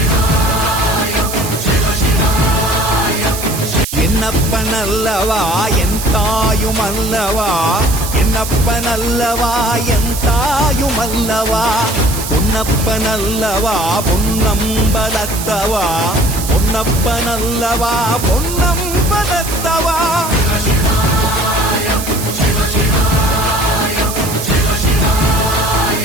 என்னப்பனல்லவா என் தாயுமல்லவா, என்னப்பனல்லவா என் தாயுமல்லவா, பொன்னப்பனல்லவா பொன்னம்பலத்தவா, பொன்னப்பனல்லவா பொன்னம்பலத்தவா.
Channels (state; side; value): noise; right; hiss, 7 dB below the sound